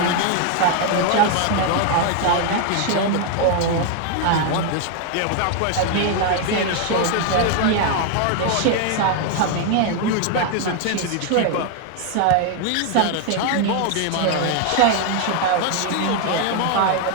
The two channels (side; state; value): both; different; correlation 0.00